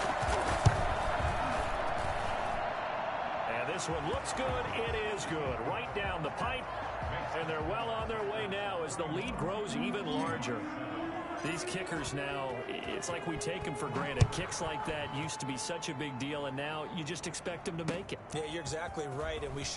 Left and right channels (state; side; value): identical; both; correlation 1.00